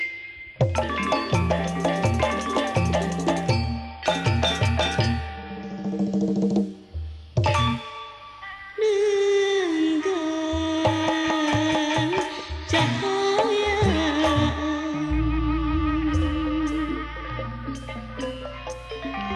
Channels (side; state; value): both; identical; correlation 1.00